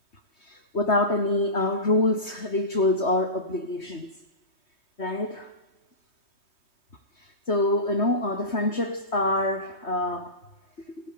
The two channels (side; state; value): right; late; 3.2 ms